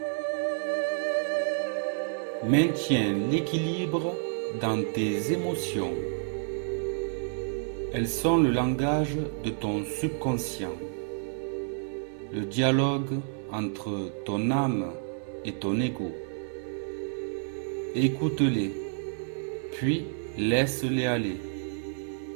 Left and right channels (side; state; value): left; silent; 58 dB below the other